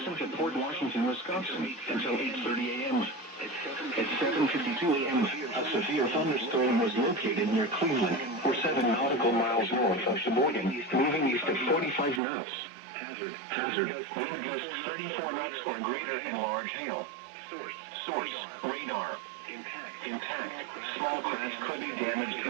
to Port Washington, Wisconsin until 8:30 a.m. At 7:52 a.m., a severe thunderstorm was located near Cleveland, or 7 nautical miles north of Sheboygan, moving east at 45 knots. Hazard, wind gusts 34 knots or greater and large hail. Source, radar. Impact, small craft could be damaged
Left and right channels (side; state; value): left; drops out; at 12.2 s